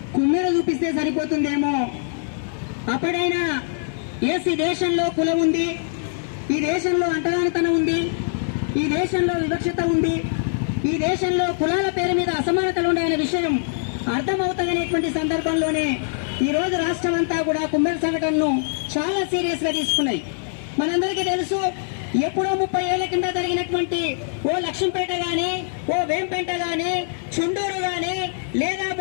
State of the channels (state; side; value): silent; right; digital silence